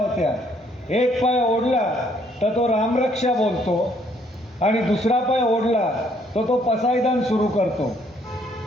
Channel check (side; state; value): both; normal; correlation 0.66